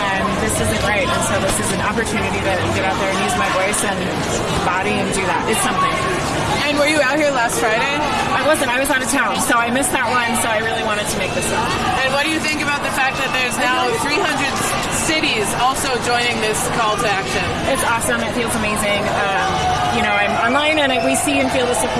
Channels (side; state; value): both; identical; correlation 1.00